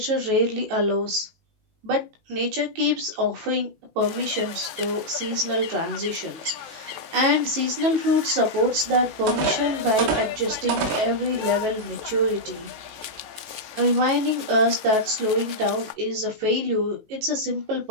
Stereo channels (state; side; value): late; left; 18 ms